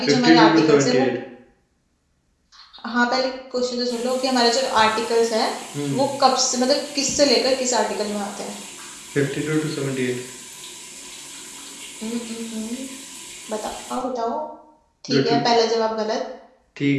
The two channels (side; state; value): both; identical; correlation 1.00